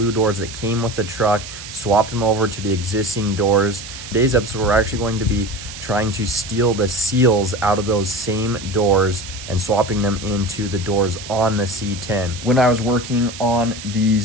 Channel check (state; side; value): noise; right; hiss, 12 dB below the sound